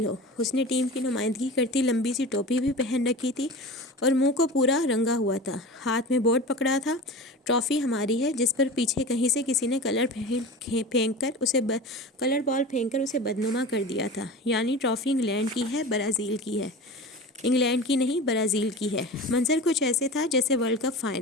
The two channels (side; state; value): both; normal; correlation 0.32